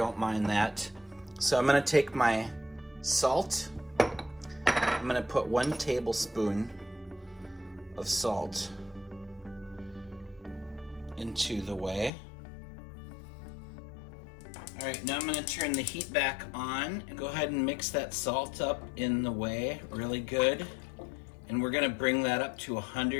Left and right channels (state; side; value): drops out; right; at 12.1 s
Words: mind that. So I'm going to take my salt. I'm going to put 1 tablespoon of salt into the whey. All right, now I'm going to turn the heat back on and go ahead and mix that salt up in the whey really good. And we're going to bring that up to